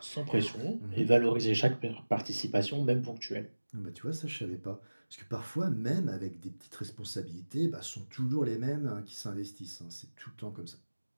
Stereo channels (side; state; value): both; inverted; correlation -1.00